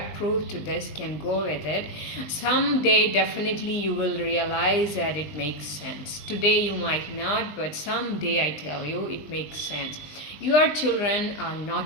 to this can go with it. Someday definitely you will realize that it makes sense. Today you might not, but someday, I tell you, it makes sense. Your children are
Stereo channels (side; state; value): right; late; 20 ms